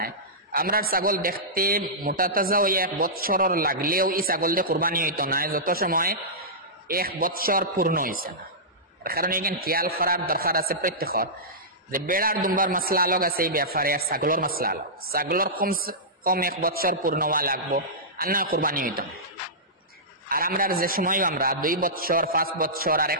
আমরা ছাগল দেখতে মোটা তাজা হয়ে 1 বছরের লাগলেও এই ছাগল দিয়ে কোরবানি হইতো না যত সময় 1 বছর পূর্ণ হয়েছে না। কারণ এখানে খেয়াল করার দরকার আছে প্রত্যেকের যে বেড়ার দুম্বার মাসলা আলোক আছে এই ব্যাপারে, আর ছাগলের মাসলা আলোক। ছাগলের কম 1 বছর পূর্ণ হওয়া লাগবো আর না কোরবানি হইতো না। আর আমরা যে সময় আমরা 2 বছর 5 বছর আর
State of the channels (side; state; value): both; normal; correlation -0.16